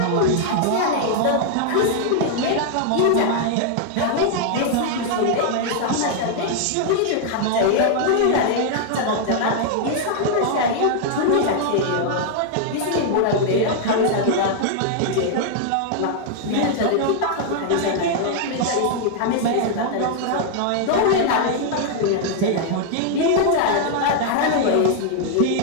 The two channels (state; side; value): different; both; correlation 0.00